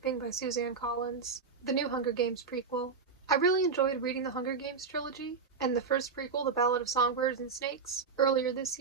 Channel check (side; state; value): left; quieter; 5.2 dB